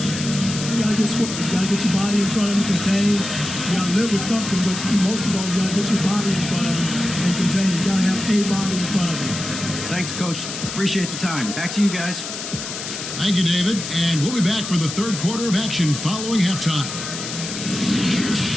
You gotta get square. You gotta get your body in front of him, contain. You gotta live with something, but most of all, you gotta get your body in front of him and contain. You gotta have a body in front of him. Thanks, Coach. Appreciate the time. Back to you guys. Thank you, David. And we'll be back for the third quarter of action following halftime.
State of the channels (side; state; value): left; noise; hiss, 7 dB below the sound